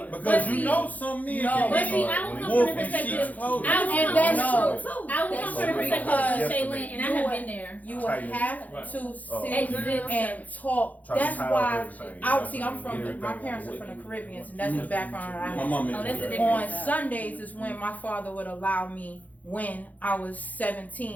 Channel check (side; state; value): right; late; 0.078 ms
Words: Because you know some men can be wolf in sheep's clothing. And that's true too. I will come from the perspective of Shaylin, and I have been there. You would have to sit and talk. That's why my parents are from the Caribbean, and that's the background I have. On Sundays is when my father would allow me, when I was